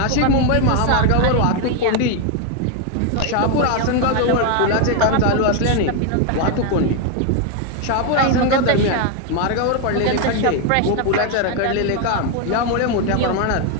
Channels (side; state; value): both; different; correlation 0.01